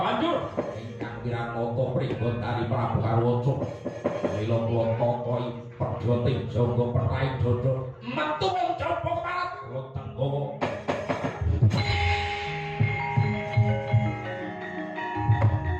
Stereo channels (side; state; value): both; identical; correlation 1.00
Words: banjur Wiranata pribon dari Prabu Harwaca mila kula tokohi perjoting jaga perai dodo metu wong jaba keparat kula tenggawa